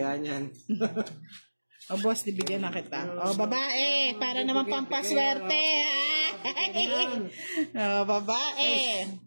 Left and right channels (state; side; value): inverted; both; correlation -1.00